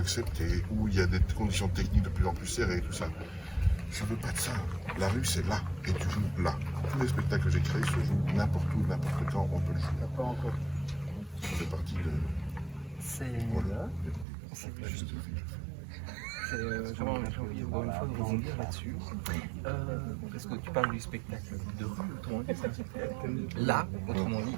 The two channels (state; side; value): drops out; left; at 14.2 s